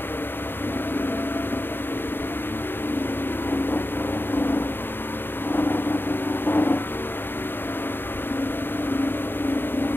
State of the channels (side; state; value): right; late; 0.099 ms